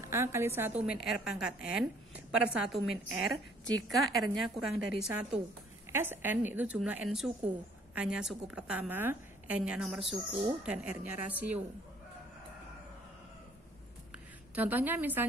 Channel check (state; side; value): normal; both; correlation 0.60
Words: A kali 1 min R pangkat N per 1 min R jika R-nya kurang dari 1. SN itu jumlah N suku, A-nya suku pertama, N-nya nomor suku, dan R-nya rasio. Contohnya